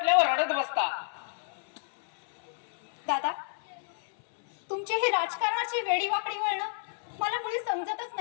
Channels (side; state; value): right; silent; 58 dB below the other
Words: रडत बसता. दादा, तुमची ही राजकारणाची वेडीवाकडी वळणं मला मुळी समजतच